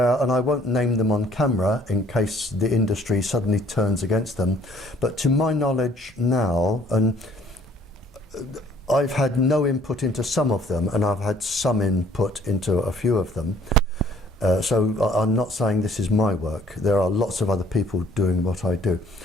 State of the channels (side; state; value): both; normal; correlation 0.58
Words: and I won't name them on camera in case the industry suddenly turns against them, but to my knowledge now, and I've had no input into some of them, and I've had some input into a few of them. So I'm not saying this is my work. There are lots of other people doing what I do.